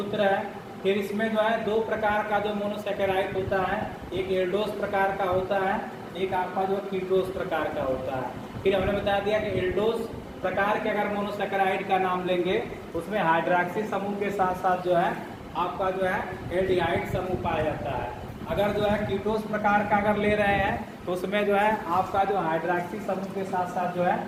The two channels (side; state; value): both; identical; correlation 1.00